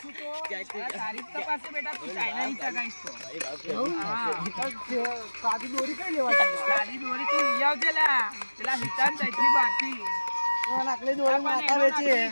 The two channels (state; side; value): inverted; both; correlation -1.00